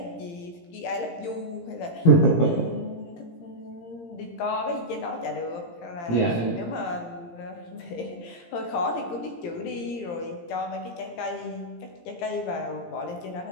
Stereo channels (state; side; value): late; right; 17 ms